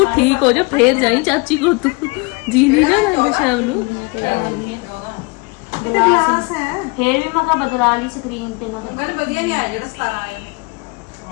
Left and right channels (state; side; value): quieter; right; 28.0 dB